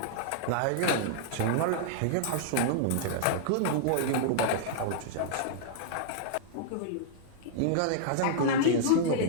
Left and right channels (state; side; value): different; both; correlation -0.01